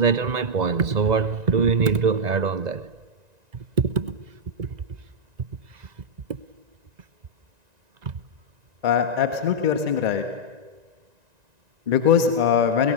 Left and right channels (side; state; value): left; late; 2.0 ms